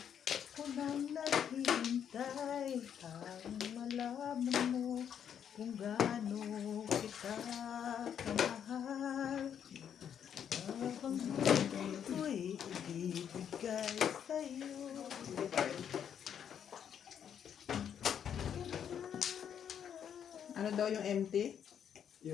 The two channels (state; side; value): quieter; right; 8.6 dB